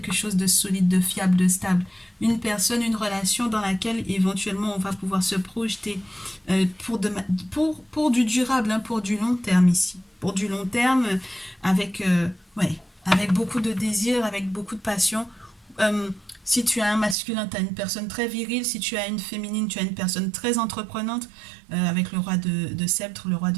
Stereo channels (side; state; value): left; drops out; at 17.2 s